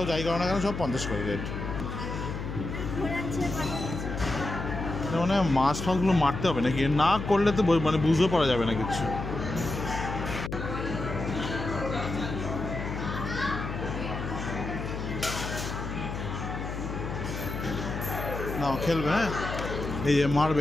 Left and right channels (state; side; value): noise; left; hum, 5 dB below the sound